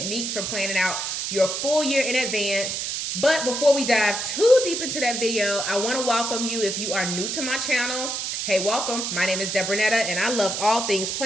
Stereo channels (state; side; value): noise; right; hiss, 2 dB below the sound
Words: for planning out your full year in advance. But before we dive too deep into that video, I want to welcome you if you are new to my channel. Hey, welcome. My name is Debronetta and I love all things